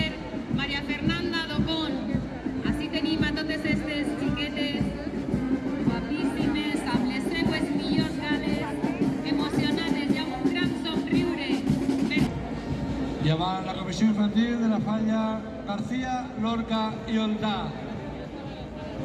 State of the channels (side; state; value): both; identical; correlation 1.00